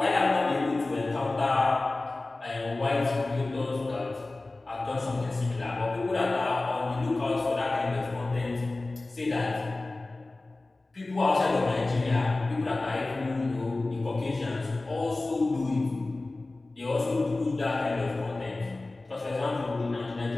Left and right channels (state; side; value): quieter; right; 3.1 dB